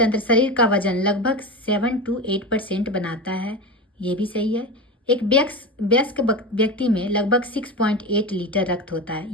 शरीर का वजन लगभग 7 to 8% बनाता है, ये भी सही है। एक वयस्क व्यक्ति में लगभग 6.8 लीटर रक्त होता है,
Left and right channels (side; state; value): both; normal; correlation 0.24